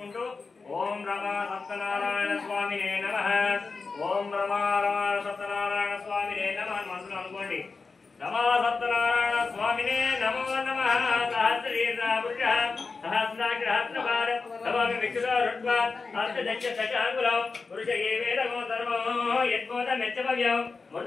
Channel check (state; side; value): quieter; right; 4.4 dB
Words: ఓం రమా సత్యనారాయణ స్వామినే నమః ఓం రమా సత్యనారాయణ స్వామినే నమః మనసులో అనుకోండి नमो सत्यनारायण स्वामिने नमो नमः सहस्रीर्नापुरुषः सहस्राग्रहस्रभार नमामि विष्णुरुद्वा अर्थदक्ष दशाङ्गुलं पुरुष एवेदमो धर्मो यद्बोधमेत्यभव्यं